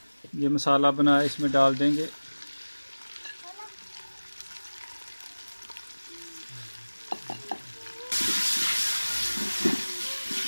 ये मसाला बनाया इसमें डाल देंगे।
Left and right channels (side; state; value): both; inverted; correlation -1.00